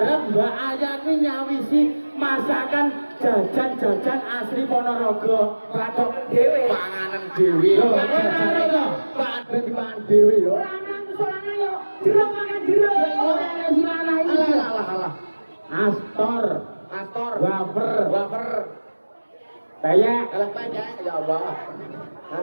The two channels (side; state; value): both; inverted; correlation -1.00